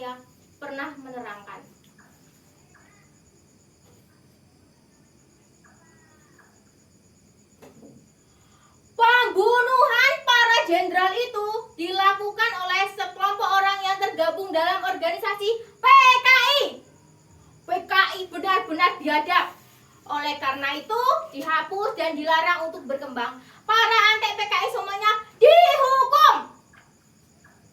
pernah menerangkan. Pembunuhan para jenderal itu dilakukan oleh sekelompok orang yang tergabung dalam organisasi PKI. PKI benar-benar biadab. Oleh karena itu dihapus dan dilarang untuk berkembang. Para antek PKI semuanya dihukum.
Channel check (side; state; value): both; identical; correlation 1.00